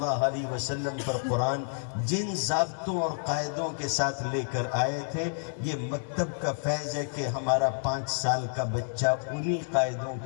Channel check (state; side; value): silent; right; digital silence